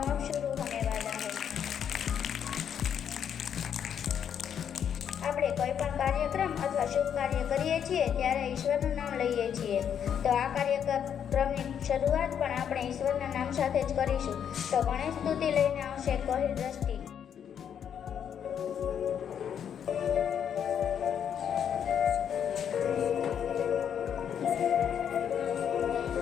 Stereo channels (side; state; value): right; quieter; 8.5 dB